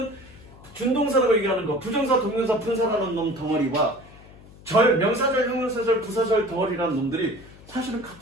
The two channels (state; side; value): noise; left; hum, 21 dB below the sound